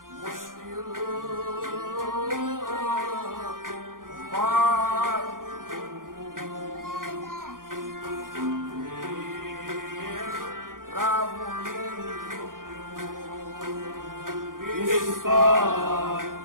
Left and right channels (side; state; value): left; late; 0.90 ms